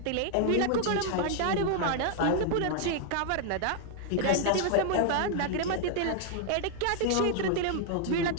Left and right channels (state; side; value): different; both; correlation 0.00